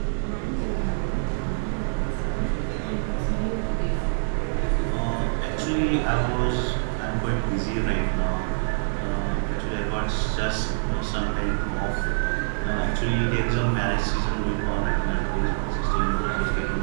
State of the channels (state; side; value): silent; left; digital silence